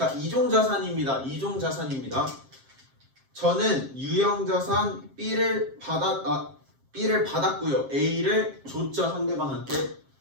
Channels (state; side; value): late; left; 7.5 ms